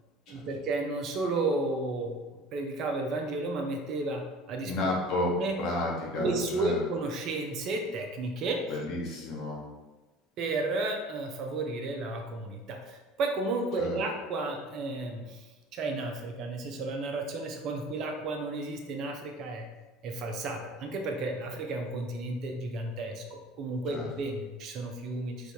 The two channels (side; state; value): both; normal; correlation 0.45